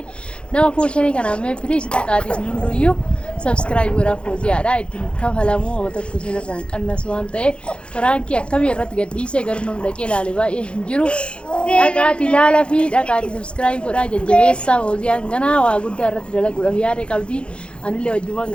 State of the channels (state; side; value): late; right; 0.057 ms